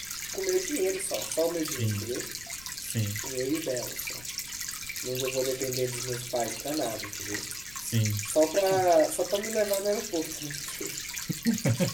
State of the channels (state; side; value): noise; left; rumble, 19 dB below the sound